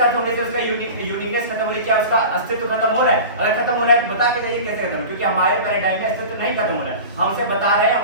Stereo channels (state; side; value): inverted; both; correlation -0.34